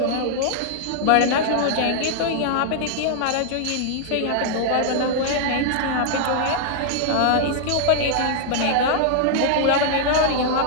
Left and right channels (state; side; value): different; both; correlation -0.01